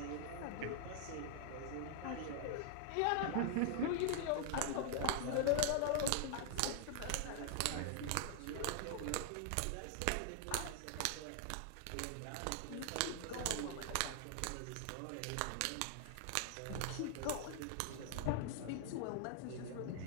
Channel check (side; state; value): both; different; correlation 0.00